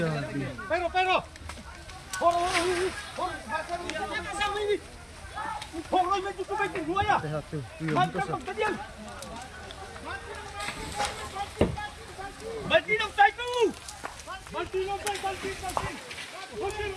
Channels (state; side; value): identical; both; correlation 1.00